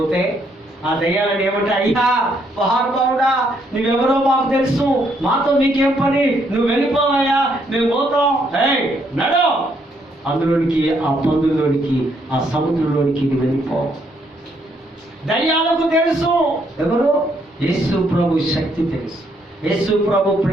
ఆ దయ్యాలను ఏమంటే, అయ్యా మహానుభావుడా, నువ్వెవరో మాకు తెలుసు, మాతో నీకేం పని, నువ్వు వెళ్ళిపోవయ్యా, మేము పోతాం, నడు అందులోనికి, ఆ పందుల్లోనికి, ఆ సముద్రంలోనికి నువ్వు వెళ్ళిపో. దయ్యాలకు తెలుసు ఎవరు? యేసు ప్రభు శక్తి తెలుసు, యేసు ప్రభు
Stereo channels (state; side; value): normal; both; correlation 0.72